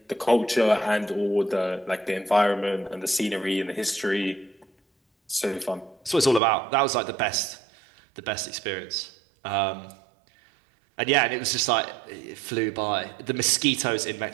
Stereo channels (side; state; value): left; drops out; at 6.4 s